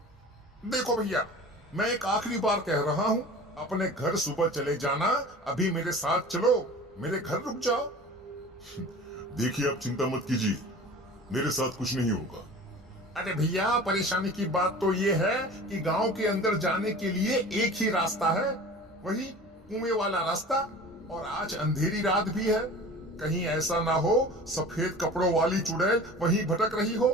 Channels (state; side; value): normal; both; correlation 0.40